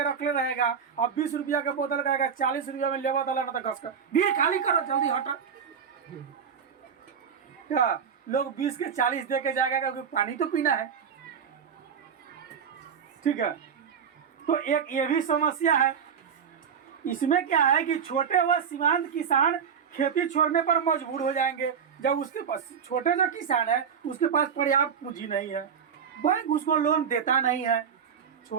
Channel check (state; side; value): quieter; left; 7.2 dB